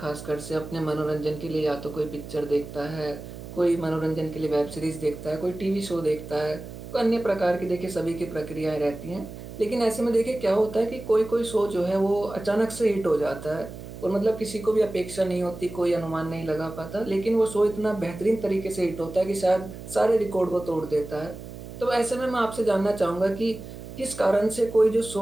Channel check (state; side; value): noise; right; hum, 12 dB below the sound